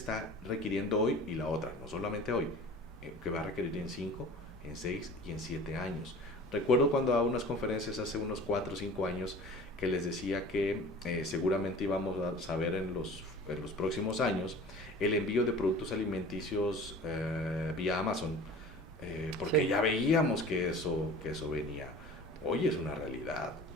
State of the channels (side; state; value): both; normal; correlation 0.41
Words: requiriendo hoy, y la otra, no solamente hoy, que va a requerir en 5, en 6 y en 7 años. Recuerdo cuando a unas conferencias hace unos 4 o 5 años que les decía que seguramente íbamos a saber en los próximos años el envío de productos alimenticios vía Amazon, porque ya veíamos que eso venía. Hoy es una realidad.